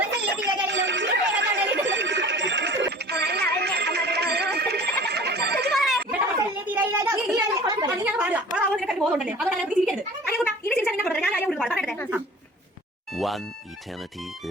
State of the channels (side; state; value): both; normal; correlation 0.44